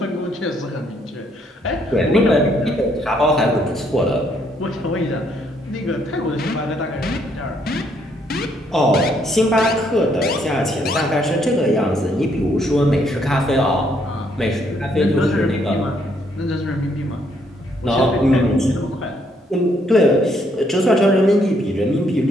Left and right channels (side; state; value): both; normal; correlation 0.71